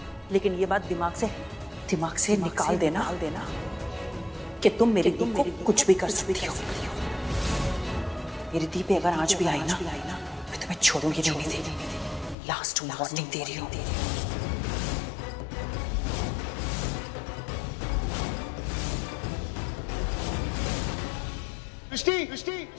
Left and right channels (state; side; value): drops out; right; at 12.4 s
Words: लेकिन ये बात दिमाग से निकाल देना कि तुम मेरी दी को कुछ भी कर सकती हो। मेरी दी पे अगर आंच भी आई ना, मैं तुम्हें छोड़ूंगी नहीं। लास्ट वार्निंग दे रही हूँ। सृष्टि!